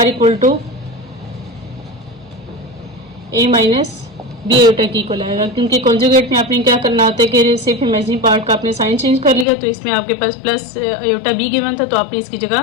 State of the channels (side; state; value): right; drops out; at 9.5 s